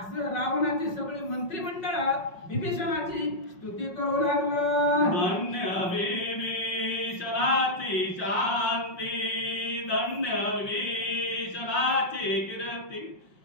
रावणाची सगळी मंत्रिमंडळ विभीषणाची स्तुती करू लागलं. धन्य विभीषणाची शांती, धन्य विभीषणाची कीर्ती,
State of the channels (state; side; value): late; right; 5.5 ms